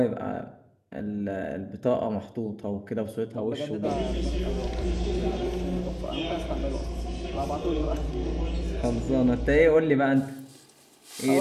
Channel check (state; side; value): identical; both; correlation 1.00